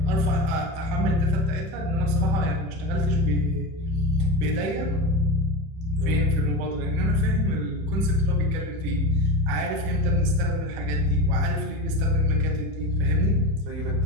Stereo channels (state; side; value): late; left; 31 ms